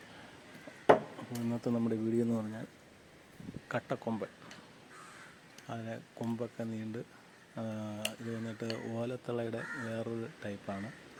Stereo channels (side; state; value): both; identical; correlation 1.00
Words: അപ്പോൾ ഇന്നത്തെ നമ്മുടെ വീഡിയോ എന്ന് പറഞ്ഞാൽ കട്ടക്കൊമ്പൻ. അതിനെ കൊമ്പൊക്കെ നീണ്ട് ഇത് വന്നിട്ട് ഓലത്തളയുടെ വേറൊരു ടൈപ്പാണ്.